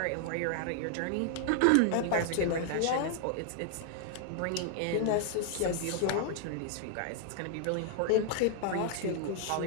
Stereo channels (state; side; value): different; both; correlation 0.00